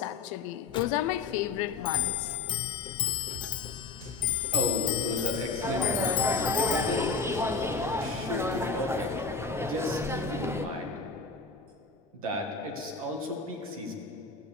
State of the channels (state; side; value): quieter; right; 4.5 dB